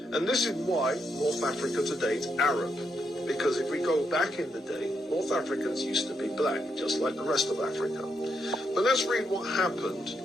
And this is why North Africa today is Arab, because if we go back in the day, North Africans used to be black, just like the rest of Africa. But let's read what happened.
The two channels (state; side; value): normal; both; correlation 0.80